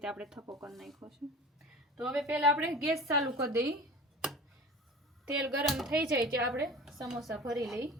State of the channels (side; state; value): both; normal; correlation 0.38